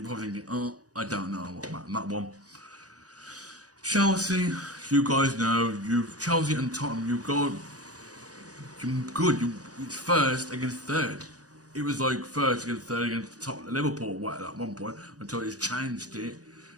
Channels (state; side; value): late; left; 0.67 ms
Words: probably thinking, oh, I don't know what about that one. Chelsea, you guys know, Chelsea and Tottenham, you're good. It's first against third. It was like first against third against Tottenham, Liverpool at one point until it's changed it.